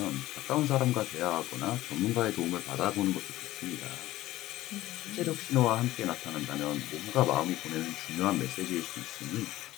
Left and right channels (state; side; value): quieter; right; 15.9 dB